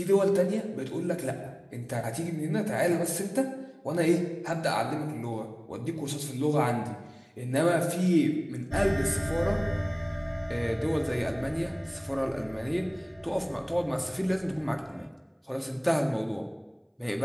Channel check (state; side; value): identical; both; correlation 1.00